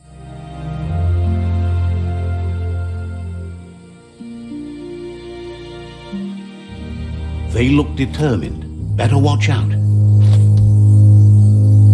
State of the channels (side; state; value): both; identical; correlation 1.00